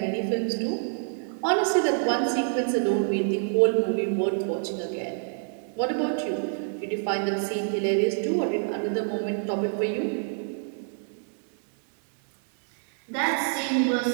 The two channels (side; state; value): left; silent; digital silence